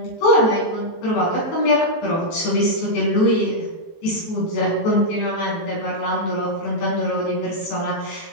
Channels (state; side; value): late; right; 18 ms